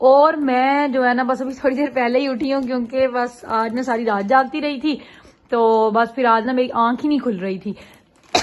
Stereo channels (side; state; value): both; identical; correlation 1.00